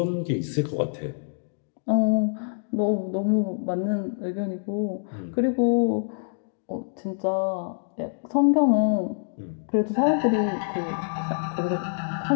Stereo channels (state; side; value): silent; right; digital silence